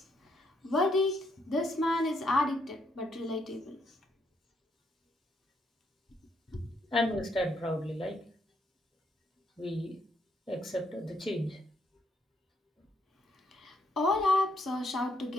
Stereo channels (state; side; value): normal; both; correlation 0.74